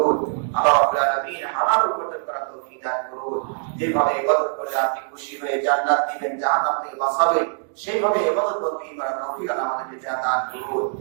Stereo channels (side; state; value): left; silent; digital silence